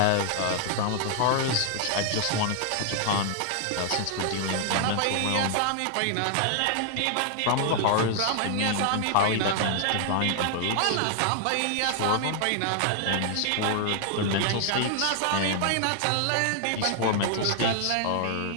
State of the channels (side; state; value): both; different; correlation 0.00